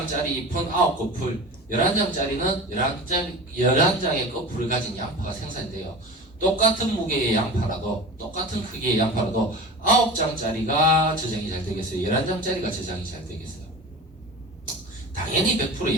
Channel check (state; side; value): normal; both; correlation 0.34